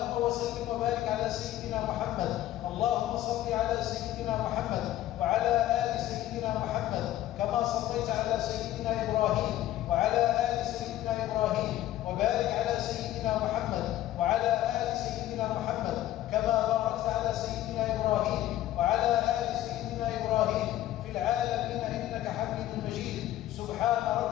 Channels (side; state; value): right; quieter; 14.0 dB